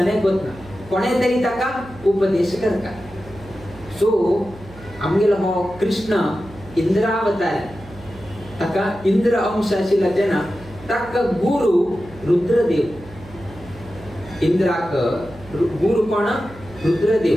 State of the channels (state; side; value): noise; right; hum, 19 dB below the sound